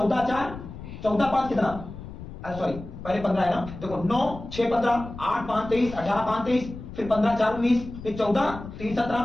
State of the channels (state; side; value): noise; left; rumble, 12 dB below the sound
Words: 4, 14 5 कितना? सॉरी, पहले 15 है ना? देखो 9 6 15, 8 5 23, 18 5 23, फिर 15 4 19, फिर 14 3